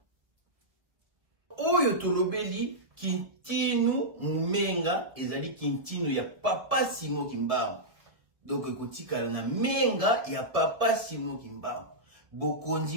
Oyo tolobeli Kintinu Menga ezali Kintinu ya Papa Simon Kimbangu. Donc ekotikala na Menga ya Papa Simon Kimbangu.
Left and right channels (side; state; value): left; late; 1.7 ms